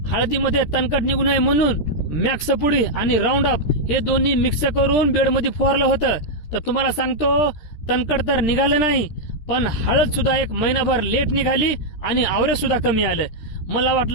हळदीमध्ये तणकट निघू नये म्हणून मॅक्स पुडी आणि राऊंड अप हे दोन्ही मिक्स करून बेडमध्ये फवारलं होतं। तर तुम्हाला सांगतो तणकट तर निघालं नाही, पण हळद सुद्धा एक महिनाभर लेट निघाली आणि आवरेज सुद्धा कमी आलं। मला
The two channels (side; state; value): right; late; 13 ms